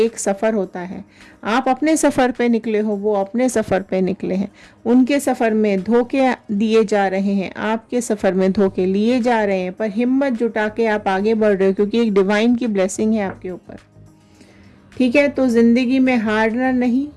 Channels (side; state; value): both; identical; correlation 1.00